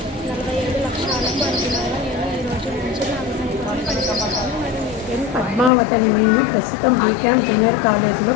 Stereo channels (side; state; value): right; drops out; at 5.7 s